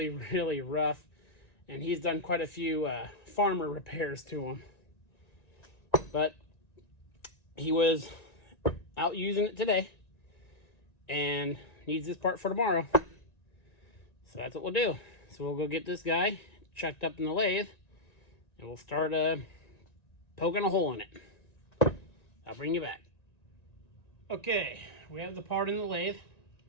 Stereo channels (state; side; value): late; right; 1.9 ms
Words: really rough. And he's done quite a few farmer repairs to them. But he was out using it today and needs this part for tomorrow. So that's what we'll do. So we'll go get this guy chucked up in the lathe, and we'll start poking a hole in it. I'll bring you back. Okay, we have the part in the lathe.